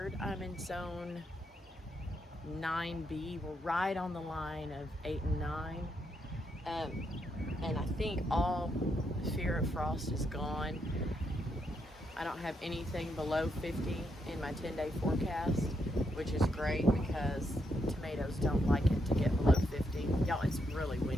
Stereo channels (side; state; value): both; normal; correlation 0.79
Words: I'm in zone 9B. We're right on the line of 8 and 9. And I think all fear of frost is gone. I don't have anything below 50 in my 10-day forecast, which is great because tomatoes don't like it to get below 50. Y'all, it's really